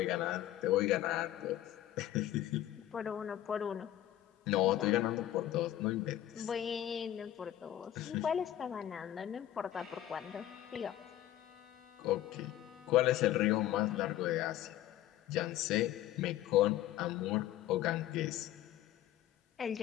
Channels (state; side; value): quieter; right; 13.0 dB